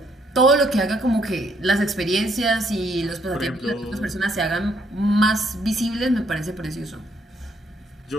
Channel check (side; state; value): both; normal; correlation 0.70